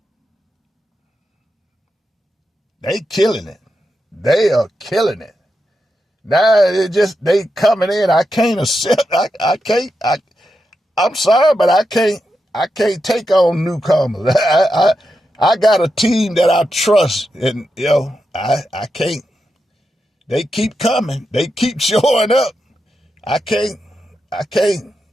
They killing it. They are killing it. Now they coming in. I can't accept. I'm sorry, but I can't take on newcomers. I got a team that I trust, and I can't. They keep coming. They keep showing up. I can't. I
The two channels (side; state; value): both; normal; correlation 0.87